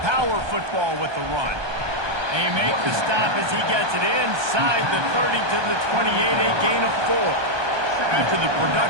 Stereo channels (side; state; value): left; late; 1.2 ms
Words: Power football with the run. They make the stop as he gets it inside the 30 to the 28, a gain of 4. After the